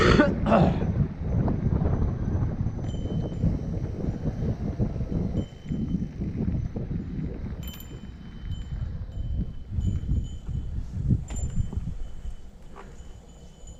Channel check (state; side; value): identical; both; correlation 1.00